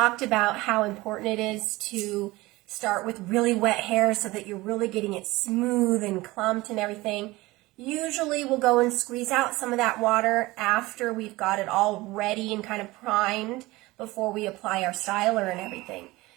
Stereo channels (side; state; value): left; quieter; 20.3 dB